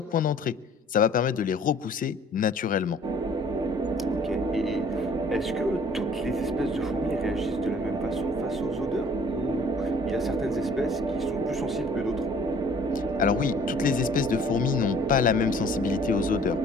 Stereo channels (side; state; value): both; normal; correlation 0.54